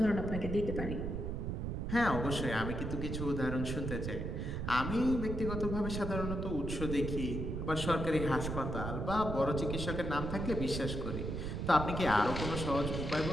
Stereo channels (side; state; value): right; noise; rumble, 3 dB below the sound